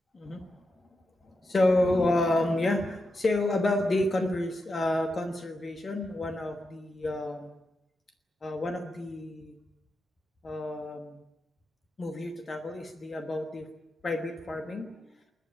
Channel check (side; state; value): both; normal; correlation 0.87